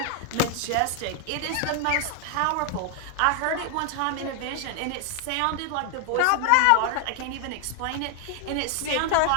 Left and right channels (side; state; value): both; different; correlation 0.00